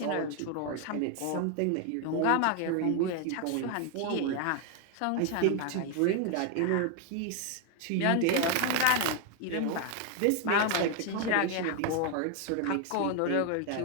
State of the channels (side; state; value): both; different; correlation 0.01